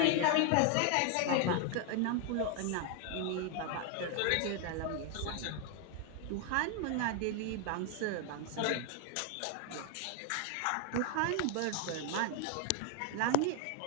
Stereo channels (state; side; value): different; both; correlation 0.00